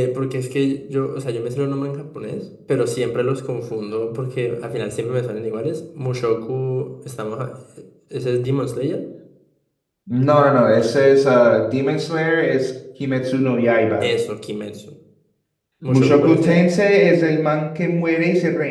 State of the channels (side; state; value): both; identical; correlation 1.00